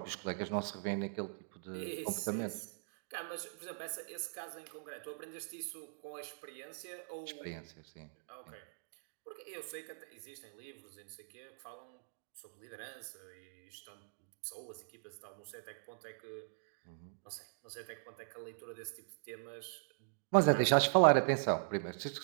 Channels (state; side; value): silent; left; digital silence